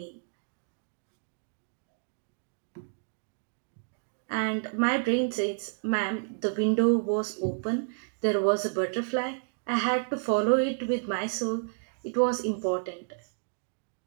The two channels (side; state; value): left; silent; digital silence